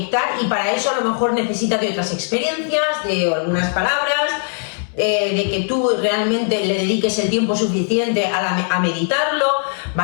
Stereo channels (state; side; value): silent; right; digital silence